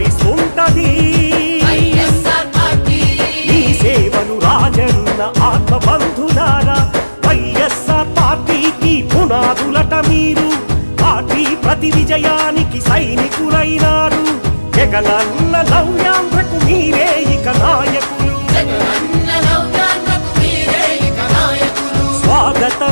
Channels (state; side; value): inverted; both; correlation -1.00